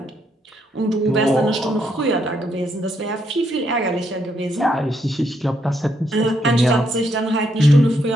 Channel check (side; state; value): both; normal; correlation 0.76